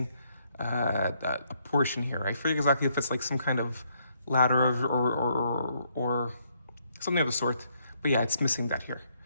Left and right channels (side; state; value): both; inverted; correlation -0.71